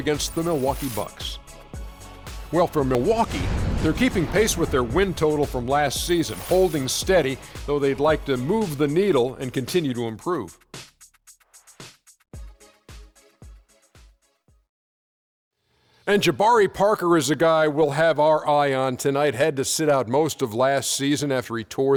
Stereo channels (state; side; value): identical; both; correlation 1.00